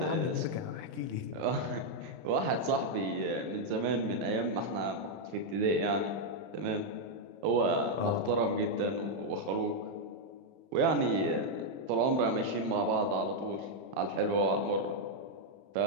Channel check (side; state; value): left; late; 31 ms